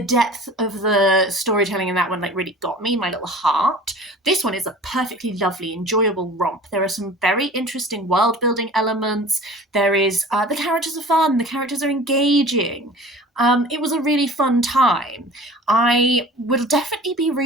depth of the storytelling in that one like really got me, my little heart. This one is a perfectly lovely, enjoyable romp. There are some very interesting world building elements. There is the characters are fun, the characters are engaging. It was a really fun time. I will definitely be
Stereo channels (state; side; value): normal; both; correlation 0.42